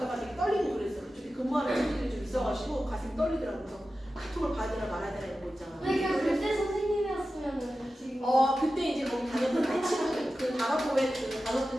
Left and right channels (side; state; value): both; normal; correlation 0.93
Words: 되게 떨리고 그랬어. 그쪽에 근무하는 친구들이 좀 있어가지고 가슴이 떨리더라고. 그래서 카톡을 봐야 되나 말아야 되나 이런 거 있잖아. 그러니까 그때 선생님이었으면 지금 그때 이제 거기 다녔던 나의 친구들, 그 단어부에 그